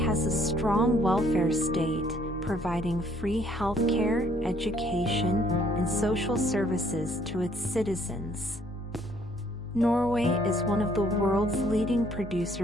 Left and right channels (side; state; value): both; normal; correlation 0.64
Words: a strong welfare state, providing free healthcare, education, and social services to its citizens. Norway is one of the world's leading